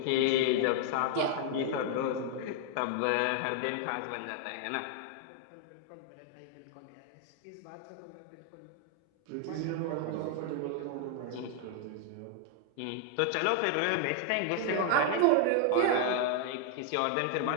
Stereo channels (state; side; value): different; both; correlation 0.00